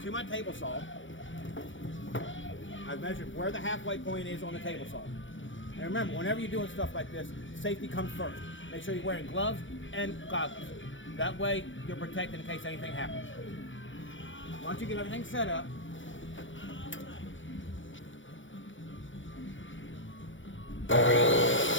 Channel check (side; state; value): right; late; 0.56 ms